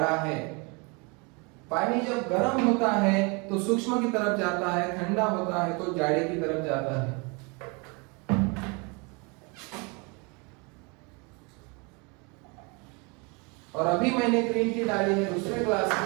है। पानी जब गर्म होता है तो सूक्ष्म की तरफ जाता है, ठंडा होता है तो जाड़े की तरफ जाता है। और अभी मैंने ग्रीन टी डाली है दूसरे ग्लास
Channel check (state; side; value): quieter; left; 30.4 dB